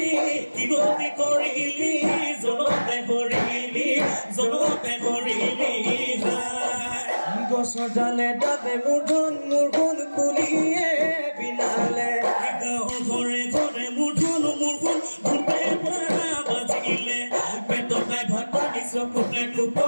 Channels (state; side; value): inverted; both; correlation -1.00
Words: কি গতি কৰিলি জনতে কৰিলি গছৰ ডালে ডালে মূৰধন কুলিয়ে বিনালে গাঁৱৰ ঘৰে ঘৰে মূৰধন ভূপে বাজিলে পেটতে ভাত পানী চকুতে